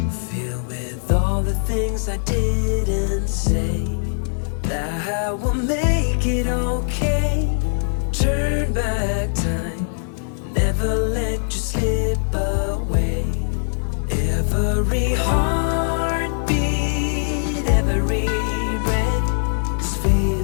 filled with all the things I didn't say, that I will make it okay. Turn back time, never let you slip away. Every heartbeat, every breath is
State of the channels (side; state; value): right; silent; 65 dB below the other